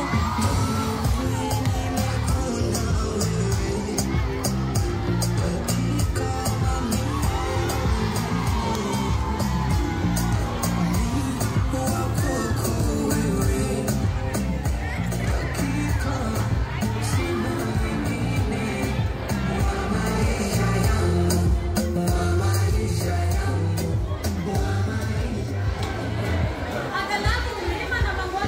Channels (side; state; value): both; identical; correlation 1.00